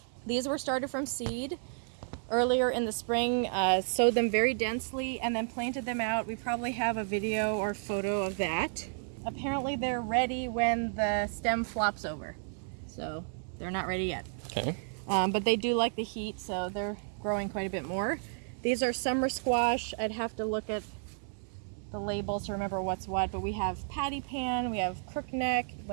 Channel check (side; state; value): left; silent; digital silence